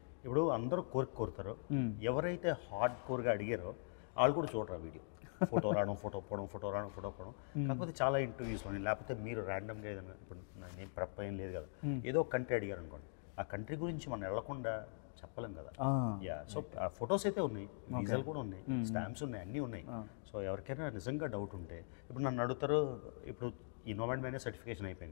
ఇప్పుడు అందరూ కోరుతారు, ఎవరైతే హార్డ్ కోర్గా అడిగారో వాళ్ళు కూడా చూడరు వీడియో. ఫోటో రావడం, ఫోటో పోవడం. కాకపోతే చాలా ఇంటర్వ్యూస్లోని లేకపోతే మీరు ర్యాండమ్గా ఏదైనా, ఇప్పుడు నేను ప్రెప్ ఏం లేదు కదా, ఏదో కంట్రీ అడిగారు అనుకోండి, ఆ కంట్రీ గురించి మనం వెళ్లకుండా చెప్పలేం కదా. సో ఫొటోస్ అయితే ఉన్నాయి, వీసాలు కూడా ఉన్నాయి, స్టాంప్స్ ఉన్నాయి, అన్నీ ఉన్నాయి. సో ఎవరికైనా నిజంగా డౌట్ ఉంటే ఇప్పుడు నన్ను అడుగుతారు. ఇప్పుడు ఈ నోమాడ్ మ్యానియా సర్టిఫికేషన్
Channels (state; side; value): silent; right; digital silence